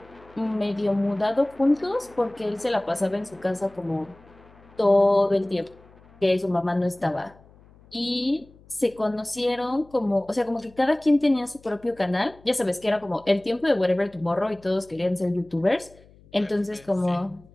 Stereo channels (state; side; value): noise; left; hum, 26 dB below the sound